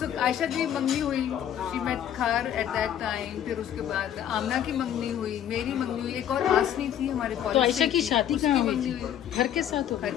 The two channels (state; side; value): quieter; right; 10.3 dB